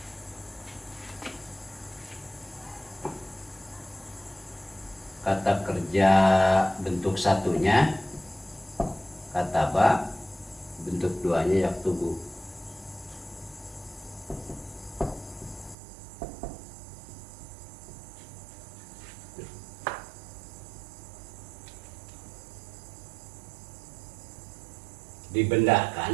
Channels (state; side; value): drops out; left; at 15.8 s